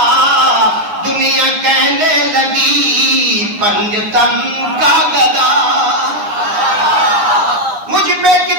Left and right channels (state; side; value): late; left; 9.7 ms